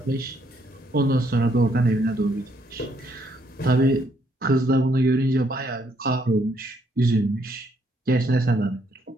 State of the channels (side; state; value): both; normal; correlation 0.71